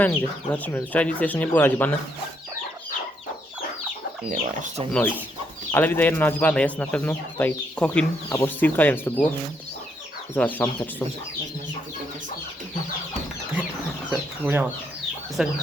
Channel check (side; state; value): both; normal; correlation 0.74